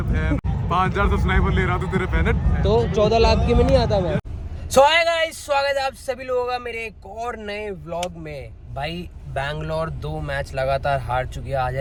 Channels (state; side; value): identical; both; correlation 1.00